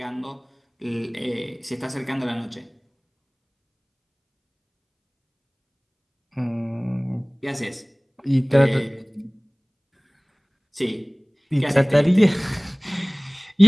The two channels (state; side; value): identical; both; correlation 1.00